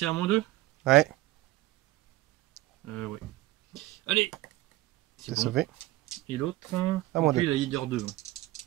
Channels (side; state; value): left; quieter; 18.0 dB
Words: à -2. Ouais. Ouais. Allez. C'est bon. Sauvé. Et l'autre, À moi lui, deux. la leader 2.